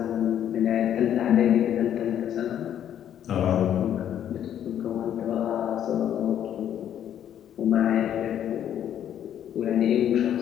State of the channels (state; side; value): quieter; right; 10.2 dB